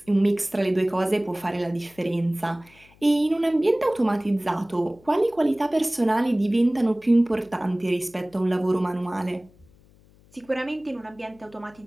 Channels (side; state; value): left; noise; hum, 28 dB below the sound